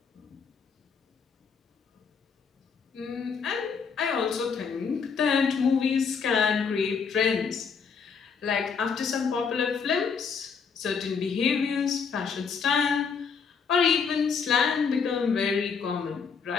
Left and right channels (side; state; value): right; quieter; 5.8 dB